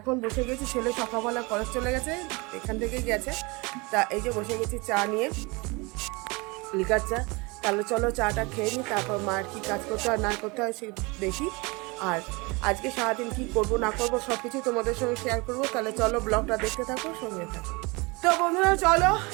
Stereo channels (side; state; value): left; quieter; 26.7 dB